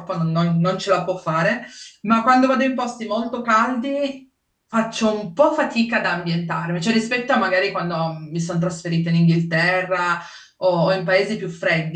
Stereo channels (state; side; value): identical; both; correlation 1.00